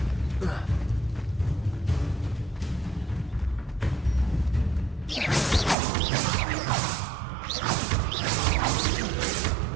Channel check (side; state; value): left; drops out; at 5.8 s